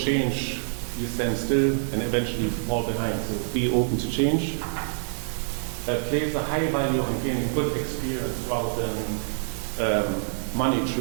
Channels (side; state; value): left; silent; digital silence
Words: you stand still and eventually fall behind. So be open to change. Place a high value on gaining good experience rather than money